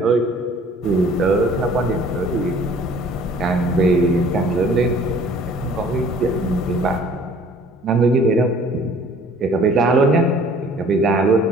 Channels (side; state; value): both; normal; correlation 0.52